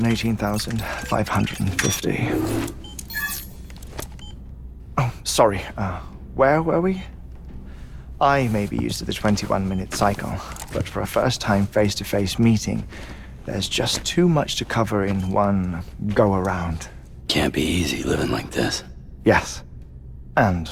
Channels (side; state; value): both; identical; correlation 1.00